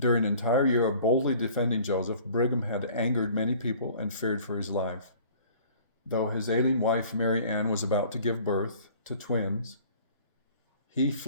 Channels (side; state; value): both; inverted; correlation -0.50